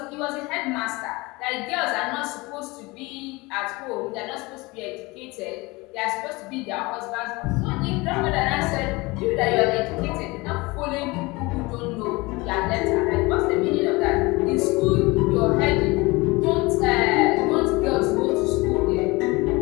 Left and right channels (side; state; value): right; quieter; 23.5 dB